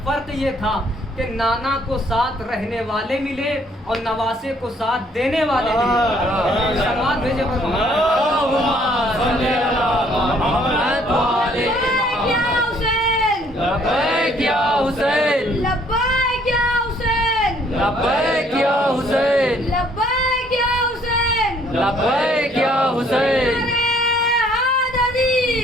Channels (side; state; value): both; normal; correlation 0.63